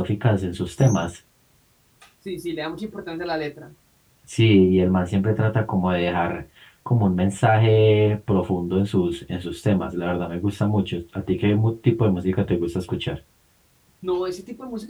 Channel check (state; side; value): identical; both; correlation 1.00